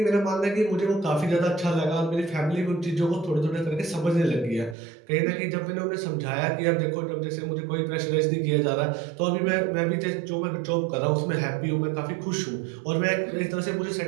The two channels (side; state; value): left; drops out; at 4.8 s